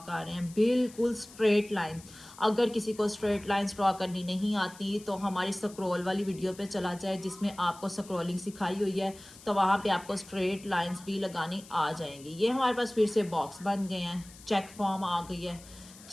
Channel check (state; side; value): noise; left; hiss, 20 dB below the sound